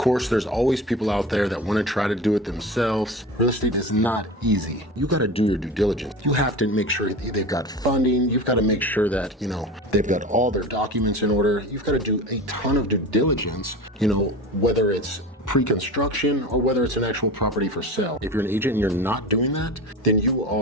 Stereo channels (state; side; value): normal; both; correlation 0.31